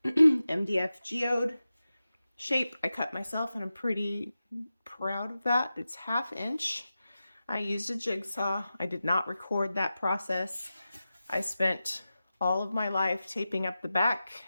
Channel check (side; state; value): both; inverted; correlation -0.93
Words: MDF geode shape. I cut myself, and I'm pretty proud of that. It's 1/2 inch. I used a jigsaw. I did not record that process. I spent all of my life taping up the back